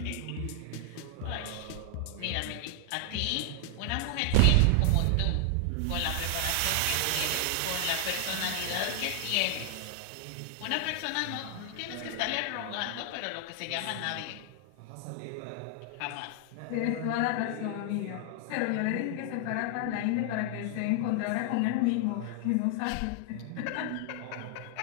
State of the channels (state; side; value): different; both; correlation 0.00